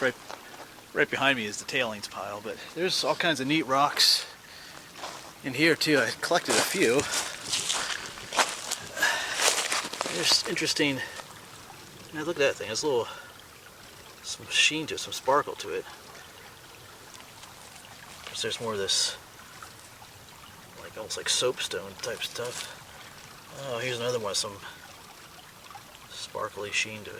right behind me is the tailings pile, but there's all kinds of neat rocks in here too. I collected a few. There's interesting. Now look at that thing. There's some sheen to it, some sparkle to it. There's more of this, like almost like soapstone type stuff. Oh, here's another one with some sparkly sheen to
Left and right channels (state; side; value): identical; both; correlation 1.00